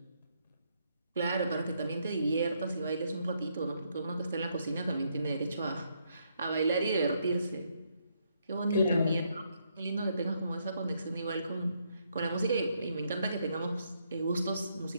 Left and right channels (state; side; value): inverted; both; correlation -0.75